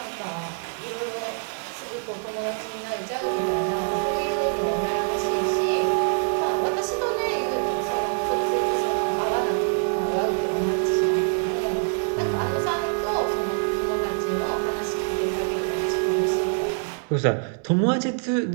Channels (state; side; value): silent; left; digital silence